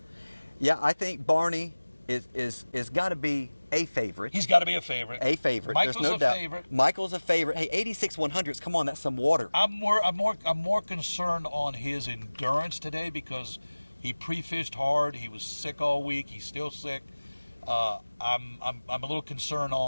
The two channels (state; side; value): inverted; both; correlation -1.00